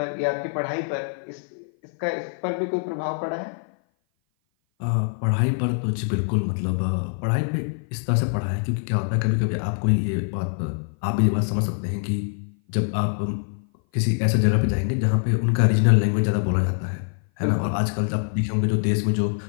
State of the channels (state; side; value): silent; right; 57 dB below the other